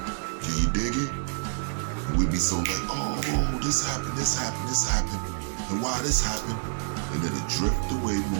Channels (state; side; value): silent; left; digital silence